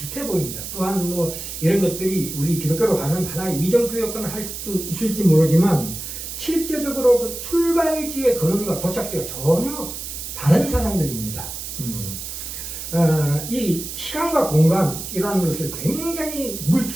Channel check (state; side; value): noise; right; hiss, 8 dB below the sound